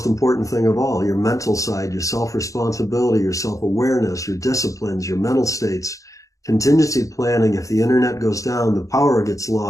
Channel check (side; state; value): right; late; 0.16 ms